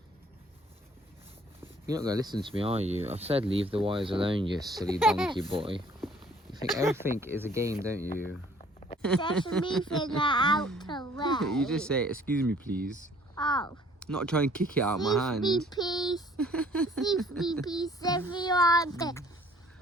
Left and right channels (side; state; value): both; normal; correlation 0.57